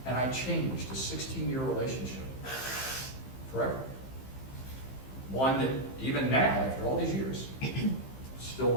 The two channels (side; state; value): right; late; 15 ms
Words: And I changed a 16-year relationship forever. One that even now, after all these years, still